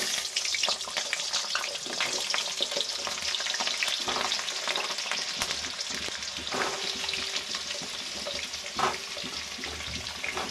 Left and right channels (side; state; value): both; identical; correlation 1.00